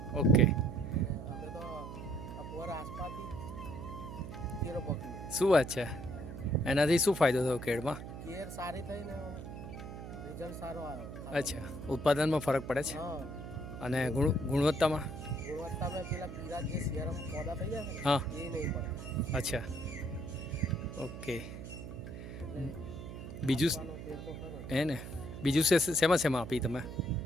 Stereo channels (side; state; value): right; noise; hum, 10 dB below the sound